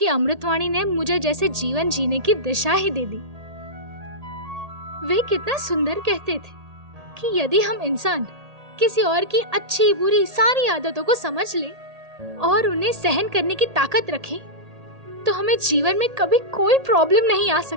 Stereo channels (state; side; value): late; left; 1.8 ms